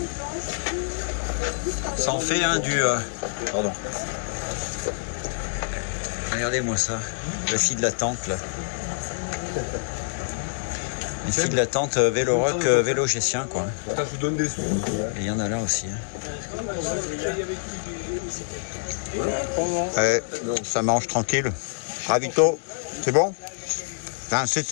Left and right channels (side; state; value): right; silent; 60 dB below the other